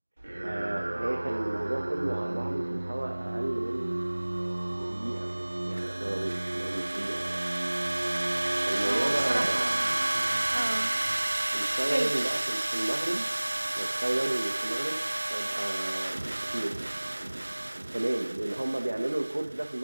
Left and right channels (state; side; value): inverted; both; correlation -1.00